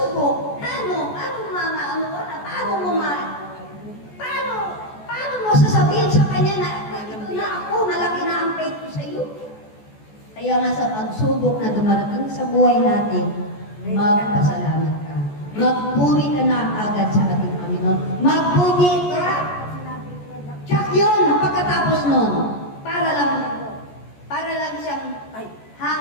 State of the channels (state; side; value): late; right; 14 ms